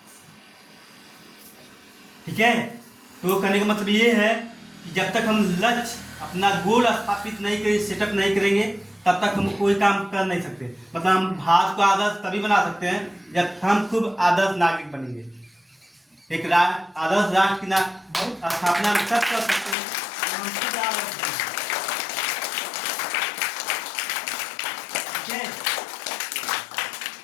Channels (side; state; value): right; drops out; at 19.8 s